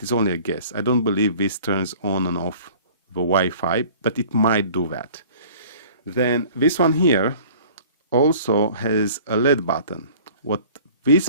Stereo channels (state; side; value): inverted; both; correlation -0.48